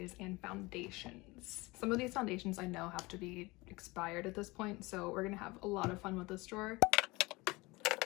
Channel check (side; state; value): right; quieter; 23.0 dB